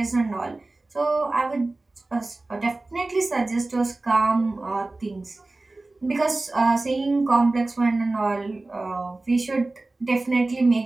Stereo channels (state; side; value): quieter; left; 3.1 dB